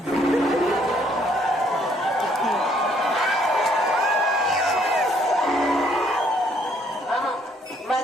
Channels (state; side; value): normal; both; correlation 0.66